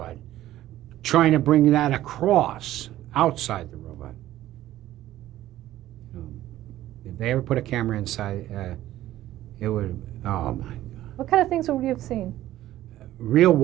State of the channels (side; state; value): left; quieter; 14.1 dB